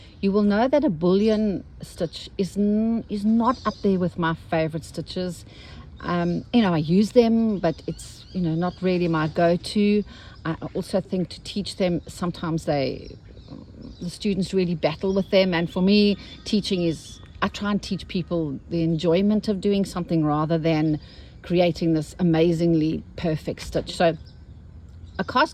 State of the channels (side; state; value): both; identical; correlation 1.00